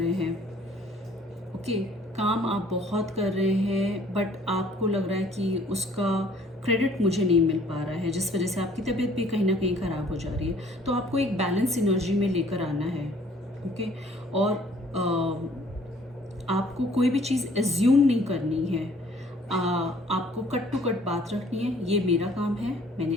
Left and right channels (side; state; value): both; normal; correlation 0.57